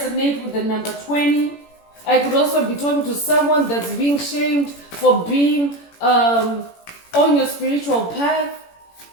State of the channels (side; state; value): right; late; 18 ms